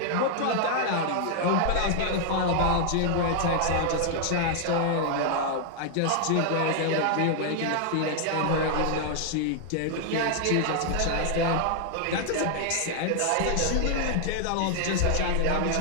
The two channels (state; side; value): different; both; correlation 0.00